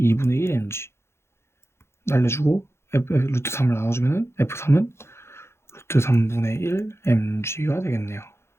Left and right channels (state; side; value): late; right; 0.12 ms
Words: 1 mg 날려주고 루트 3을 나눠주면 F3은 루트 3분의 1 mg가 되겠네요.